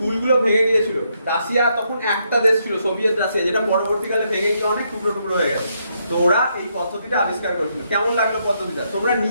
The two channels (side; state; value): both; inverted; correlation -0.77